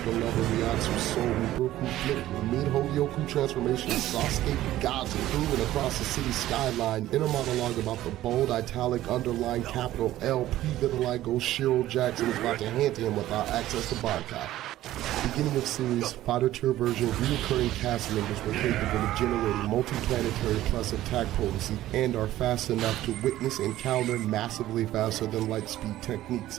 level Ryatsu Soul Reaper who flipped with mid-Holyoku transformation Sasuke gods moving across the city skyline. Inner monologue about the bold italic underline capital L pre-vitiligo Shiro Jackson is about to hand to him without access to boycott. Beginning of series, fighter tier version, reoccurring cast members were capable of generating multi-planetary plus attack potency and are fast enough to witness and counter massively faster than light speed techniques,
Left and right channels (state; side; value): quieter; left; 14.5 dB